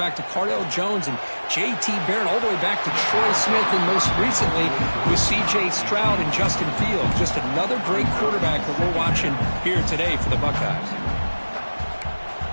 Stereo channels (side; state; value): both; inverted; correlation -1.00